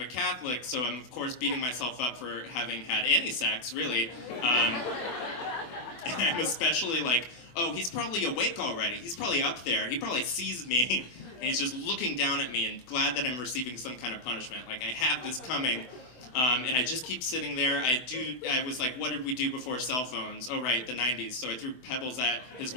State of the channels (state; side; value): late; right; 24 ms